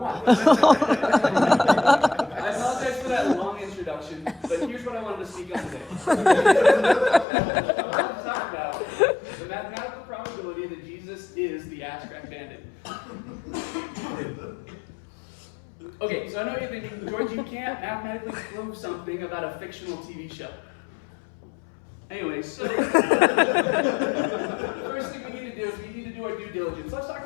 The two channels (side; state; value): right; drops out; at 7.2 s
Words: I apologize for that long introduction, but here's what I wanted to speak on today. I want to talk about the mathematical probability that Jesus is the Ass Crack Bandit. Okay, so I know you're thinking, George, you can't mathematically prove something about a fictional TV show. Anyway, so the first thing we need to do is we need to do our due diligence. Let's talk